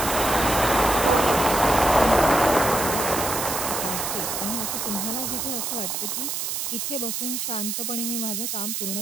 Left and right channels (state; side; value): noise; right; hiss, 2 dB below the sound